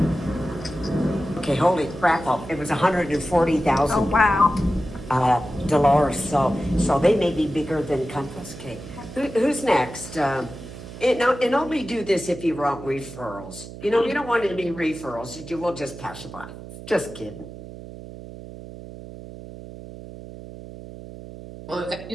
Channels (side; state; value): right; noise; hum, 13 dB below the sound